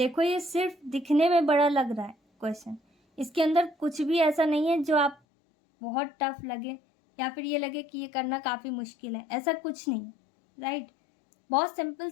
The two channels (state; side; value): drops out; right; at 5.2 s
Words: ये सिर्फ दिखने में बड़ा लग रहा है क्वेश्चन, इसके अंदर कुछ भी ऐसा नहीं है जो आप बहुत टफ लगे या फिर ये लगे कि ये करना काफ़ी मुश्किल है, ऐसा कुछ नहीं है, राइट। बहुत सिंपल